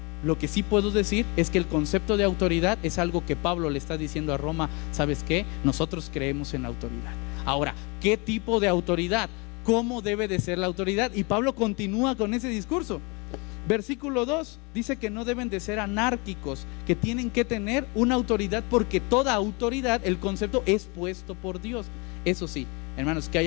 Lo que sí puedo decir es que el concepto de autoridad es algo que Pablo le está diciendo a Roma. ¿Sabes qué? Nosotros creemos en la autoridad. Ahora, ¿qué tipo de autoridad? ¿Cómo debe de ser la autoridad? Y Pablo continúa con ese discurso. Versículo 2 dice que no deben de ser anárquicos, que tienen que tener una autoridad, porque toda autoridad, el concepto es puesto por Dios. Eso sí, hermanos, que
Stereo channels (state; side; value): quieter; right; 29.4 dB